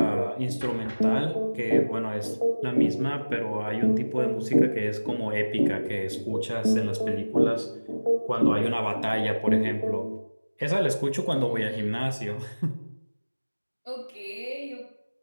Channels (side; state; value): both; inverted; correlation -1.00